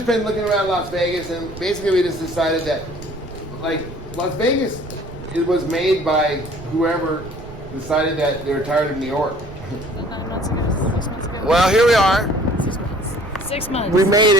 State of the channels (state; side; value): noise; right; rumble, 15 dB below the sound